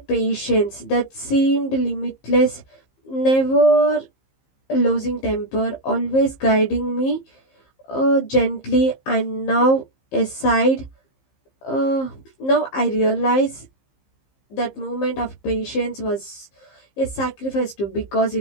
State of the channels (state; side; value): late; right; 15 ms